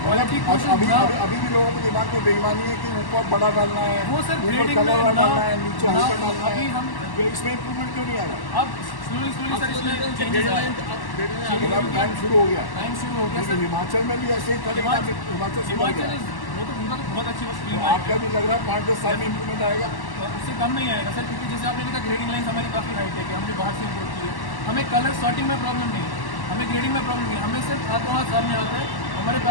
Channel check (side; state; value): right; late; 1.1 ms